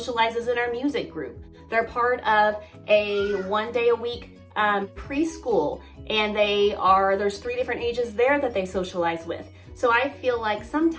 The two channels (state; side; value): identical; both; correlation 1.00